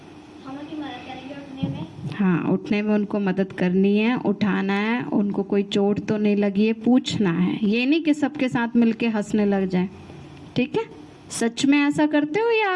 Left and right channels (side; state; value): both; identical; correlation 1.00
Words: हाँ, उठने में उनको मदद करनी है, उठाना है, उनको कोई चोट तो नहीं लगी है पूछना है। ये नहीं कि सबके साथ मिलके हंसने लग जाए। ठीक है, सच में ऐसा करते हो या